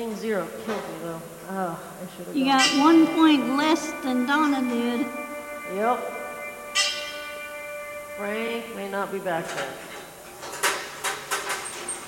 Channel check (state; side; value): identical; both; correlation 1.00